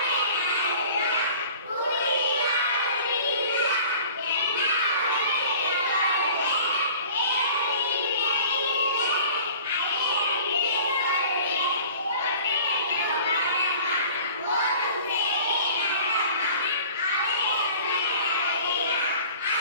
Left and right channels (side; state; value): both; inverted; correlation -0.46